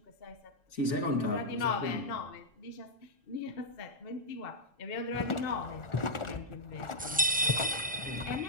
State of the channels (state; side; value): normal; both; correlation -0.08